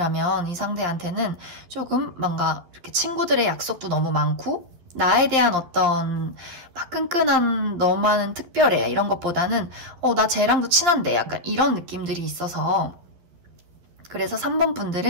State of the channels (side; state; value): left; late; 11 ms